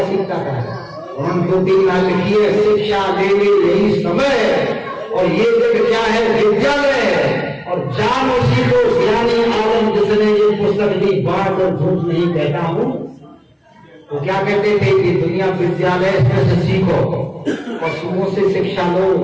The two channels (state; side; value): identical; both; correlation 1.00